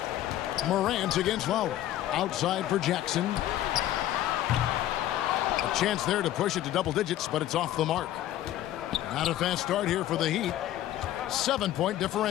Morant against Lowry. Outside for Jackson. A chance there to push it to double digits, but it's off the mark. Not a fast start here for the Heat. 7-point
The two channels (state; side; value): quieter; right; 13.2 dB